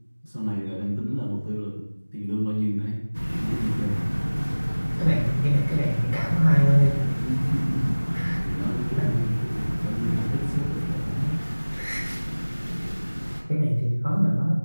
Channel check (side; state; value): both; inverted; correlation -1.00